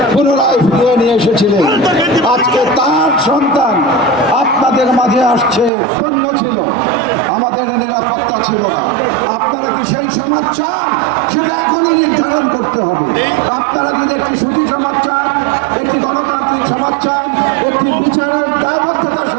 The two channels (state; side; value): drops out; left; at 5.7 s